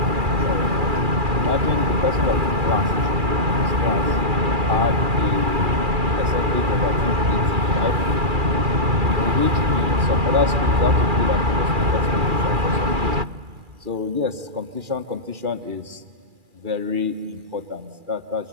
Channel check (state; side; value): late; left; 2.4 ms